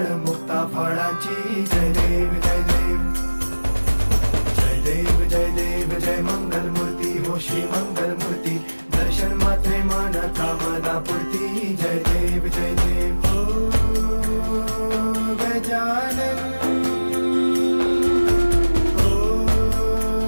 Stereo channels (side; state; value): both; inverted; correlation -1.00